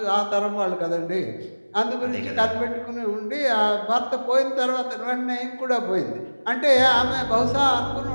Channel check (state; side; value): inverted; both; correlation -1.00